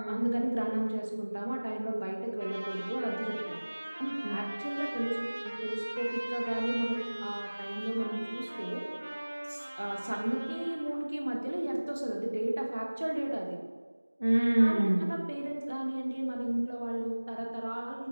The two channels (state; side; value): inverted; both; correlation -1.00